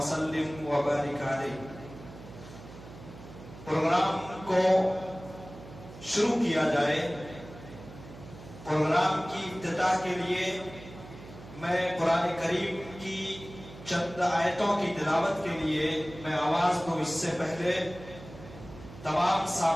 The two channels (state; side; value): noise; right; hum, 16 dB below the sound